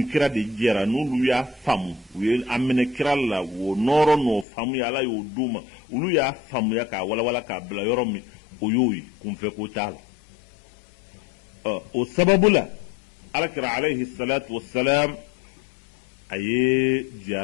kira de jɛra n'olu y'a faamu u ye a minɛ kira la o nɔrɔ n'o faamuya ala y'o d'u ma olu y'a faamuya k'a walawala k'a bila yɔrɔ min o y'o ye kunfɛ ko t'a la o sababu la alakira alayhi salatu wassalam a ye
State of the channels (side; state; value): right; drops out; at 4.5 s